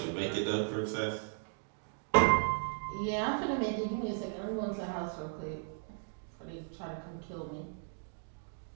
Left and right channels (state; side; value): silent; left; digital silence